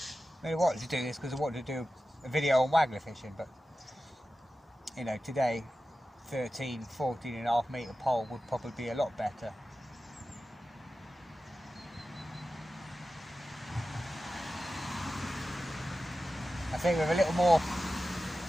I mean, I wanted to do this because I wanted to do a video on waggler fishing, but you know, today 14.5 metre pole would probably be a lot better. I think with a little more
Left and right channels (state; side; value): normal; both; correlation 0.93